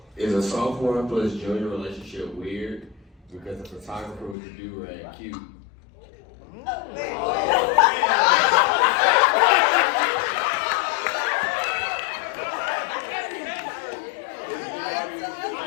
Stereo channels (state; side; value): drops out; right; at 4.4 s